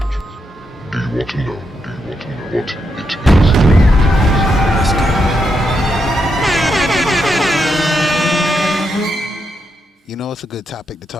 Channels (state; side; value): normal; both; correlation 0.82